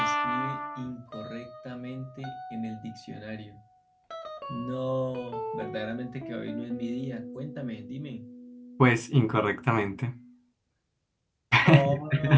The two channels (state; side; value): identical; both; correlation 1.00